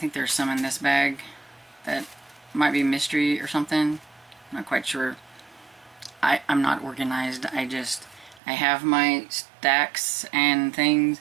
there's some in this bag that might be mystery or something. I'm not quite sure. I'm not organized. I have my stacks and things,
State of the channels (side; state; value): left; drops out; at 8.4 s